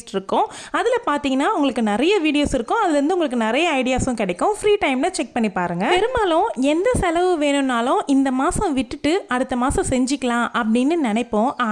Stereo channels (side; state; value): both; identical; correlation 1.00